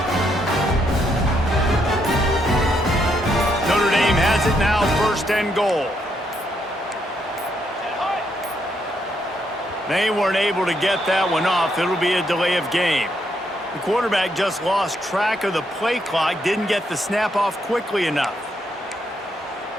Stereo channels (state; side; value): normal; both; correlation 0.76